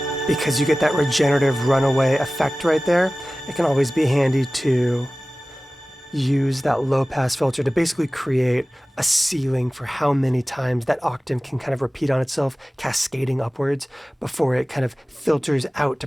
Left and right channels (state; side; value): normal; both; correlation 0.97